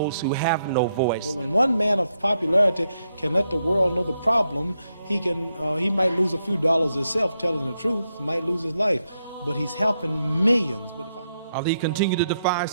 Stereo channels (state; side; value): inverted; both; correlation -0.82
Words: who have no voice. But when one man of popularity can let the world know the problem, he might lose a few dollars himself telling the truth, might lose his life, but he's helping millions. But Ali continued to defy